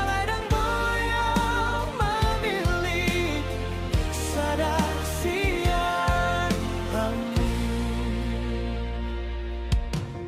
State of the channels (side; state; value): both; identical; correlation 1.00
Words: dang boyang mamili sada sian hami.